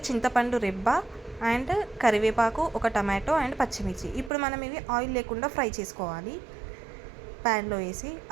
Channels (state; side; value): drops out; left; at 4.3 s